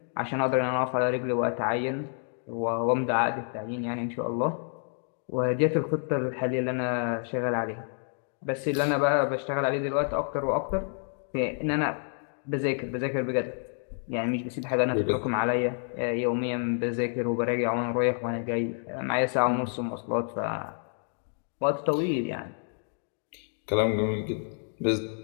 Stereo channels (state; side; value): silent; right; 59 dB below the other